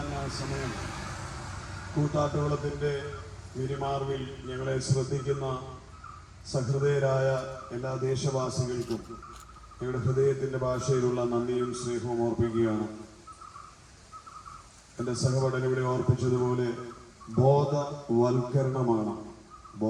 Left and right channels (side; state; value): both; identical; correlation 1.00